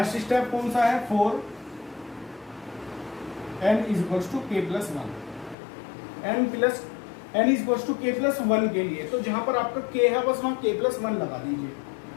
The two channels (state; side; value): drops out; right; at 5.6 s